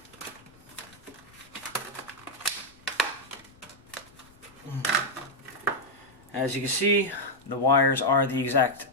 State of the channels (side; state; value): left; noise; rumble, 27 dB below the sound